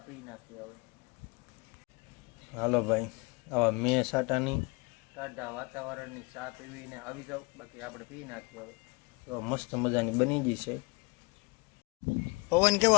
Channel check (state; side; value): quieter; right; 28.6 dB